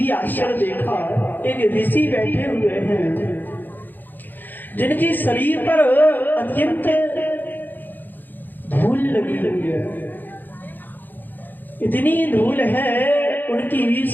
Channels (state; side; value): late; right; 0.089 ms